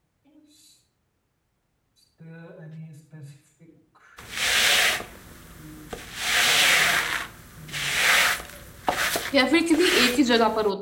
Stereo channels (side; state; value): both; identical; correlation 1.00